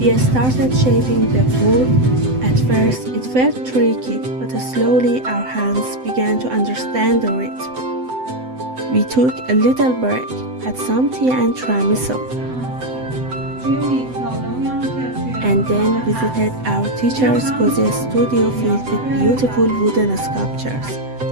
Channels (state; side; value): late; left; 7.9 ms